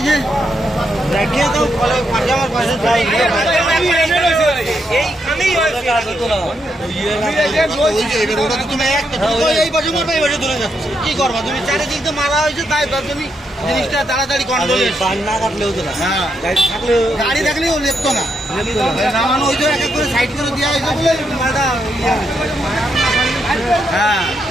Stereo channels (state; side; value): normal; both; correlation 0.80